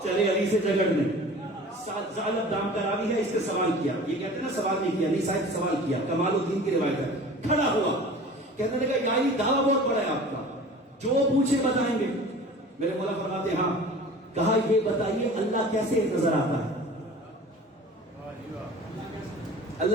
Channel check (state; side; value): normal; both; correlation 0.41